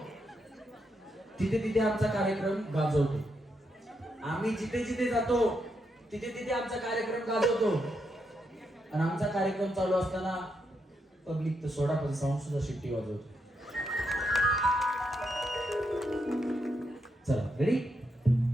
तिथे तिथे आमचा कार्यक्रम गाजवतो. आम्ही जिथे जिथे जातो तिथे तिथे आमचा कार्यक्रम गाजवतो. आणि आमचा कार्यक्रम चालू असताना पब्लिक तर सोडा पण साऊंड सुद्धा शिट्टी वाजवतो. चला रेडी?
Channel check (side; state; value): both; normal; correlation 0.81